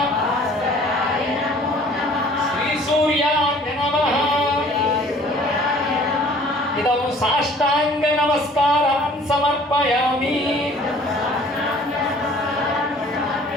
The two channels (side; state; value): both; normal; correlation 0.53